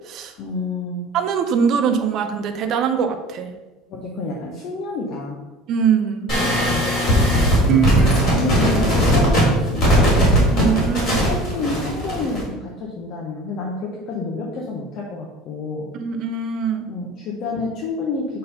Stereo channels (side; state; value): both; normal; correlation 0.42